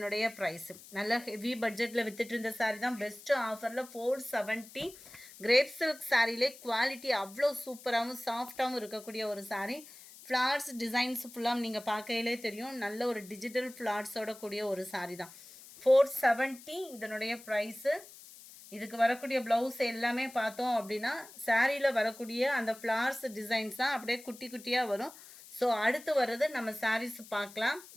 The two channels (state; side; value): noise; left; hiss, 19 dB below the sound